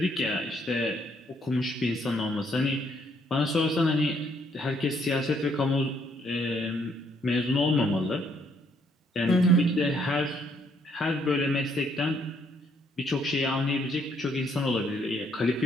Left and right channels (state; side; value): normal; both; correlation 0.69